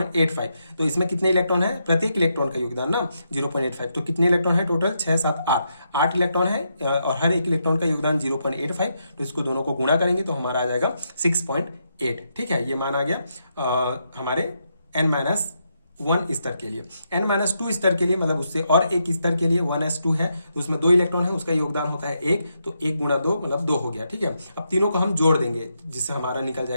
तो इसमें कितने इलेक्ट्रॉन है, प्रत्येक इलेक्ट्रॉन का योगदान ना 0.85, तो कितने इलेक्ट्रॉन है टोटल 6 7 8 इलेक्ट्रॉन है और हर एक इलेक्ट्रॉन का योगदान 0.85। तो इसको दोनों को गुणा करेंगे तो हमारा आ जाएगा 6.8। ठीक है, ये मान आ गया हमारे n-1 स्तर के लिए। n-2 स्तर के लिए मतलब उससे और एक स्तर के लिए 1s2 है, तो उसमें 2 इलेक्ट्रॉन है, उसका योगदान होता है 1, तो 1 गुणा 2 मतलब 2 हो गया। ठीक है, अब तीनों को हम जोड़ देंगे जिससे हमारा निकल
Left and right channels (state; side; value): inverted; both; correlation -0.81